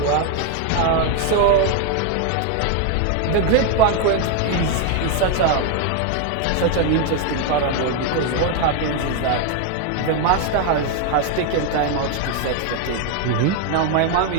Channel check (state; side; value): different; both; correlation 0.01